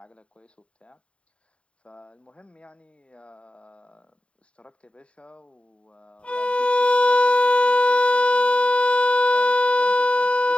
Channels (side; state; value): right; late; 0.060 ms